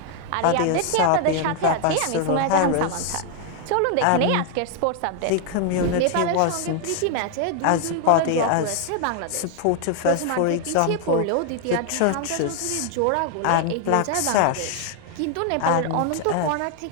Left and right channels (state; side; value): different; both; correlation 0.00